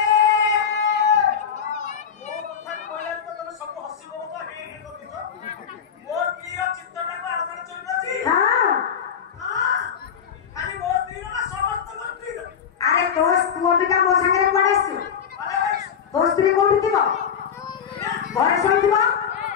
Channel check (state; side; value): quieter; right; 7.6 dB